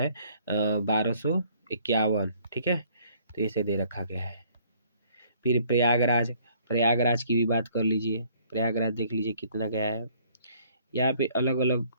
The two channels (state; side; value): inverted; both; correlation -0.60